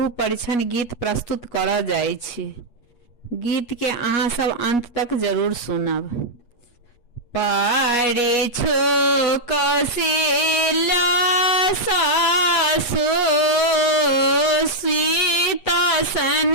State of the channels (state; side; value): late; right; 8.3 ms